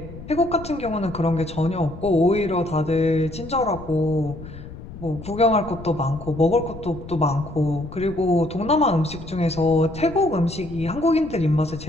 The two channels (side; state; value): left; noise; rumble, 14 dB below the sound